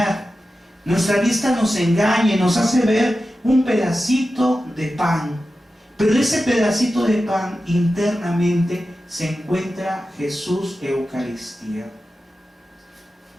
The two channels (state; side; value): normal; both; correlation 0.93